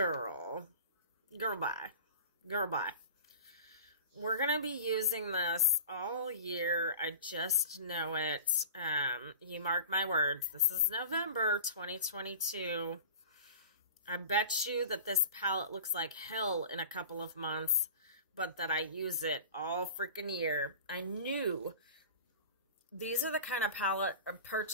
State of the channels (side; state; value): both; inverted; correlation -0.37